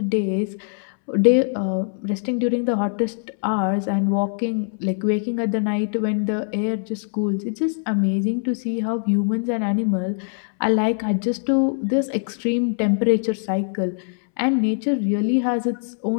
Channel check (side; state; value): right; silent; 64 dB below the other